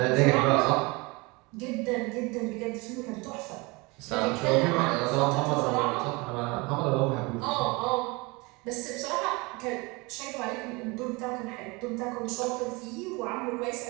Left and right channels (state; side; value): quieter; left; 25.9 dB